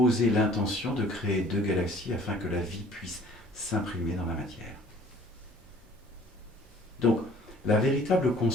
l'intention de créer 2 galaxies afin que la vie puisse s'imprimer dans la matière. Donc, la véritable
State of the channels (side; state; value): both; normal; correlation 0.53